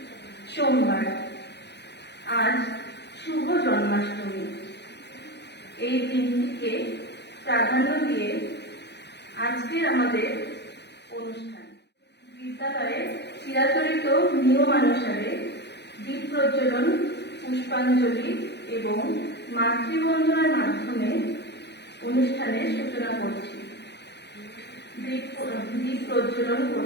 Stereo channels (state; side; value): late; right; 0.50 ms